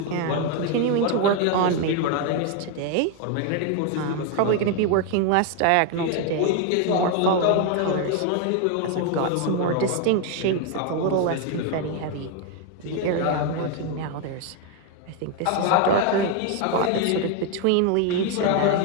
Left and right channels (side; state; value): both; different; correlation 0.01